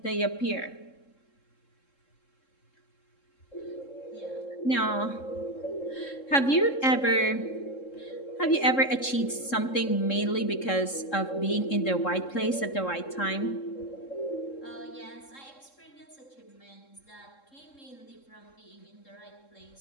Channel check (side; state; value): right; late; 3.7 ms